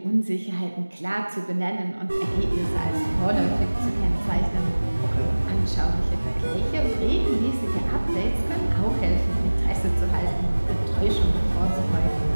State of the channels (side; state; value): both; inverted; correlation -1.00